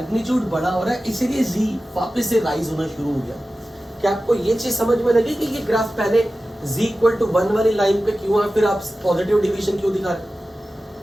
बड़ा हो रहा है, इसीलिए z वापस से राइज होना शुरू हो गया। क्या आपको ये चीज समझ में लगी कि ये ग्राफ पहले z = 1 वाली लाइन पे क्यों है, फिर आप पॉजिटिव डिवीजन क्यों दिखा रहे?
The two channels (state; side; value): normal; both; correlation 0.95